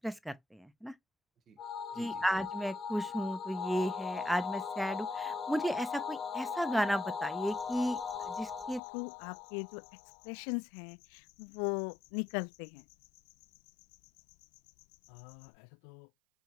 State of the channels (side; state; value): right; drops out; at 8.8 s